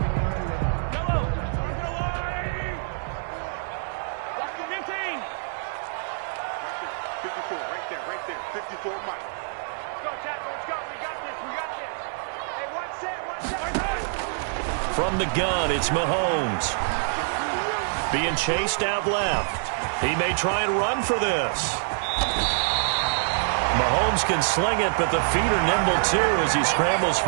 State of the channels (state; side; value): silent; left; digital silence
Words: From the gun, it's Mahomes. Being chased out left. He may try and run for this. Mahomes can sling it, but the feet are nimble too as he scrambles